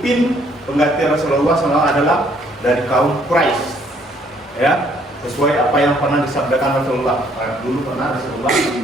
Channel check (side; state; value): both; normal; correlation 0.65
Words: pengganti Rasulullah SAW adalah dari kaum Quraisy, ya, sesuai apa yang pernah disabdakan Rasulullah. Dulu pernah Rasulullah,